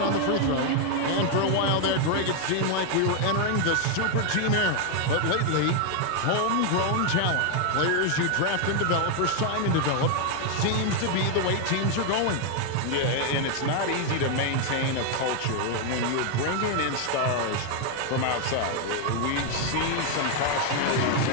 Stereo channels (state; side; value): different; both; correlation 0.00